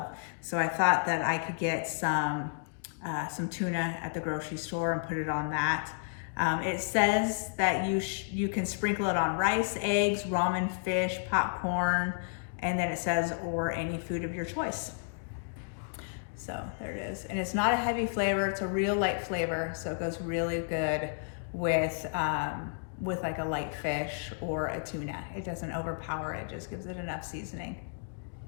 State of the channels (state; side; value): silent; right; digital silence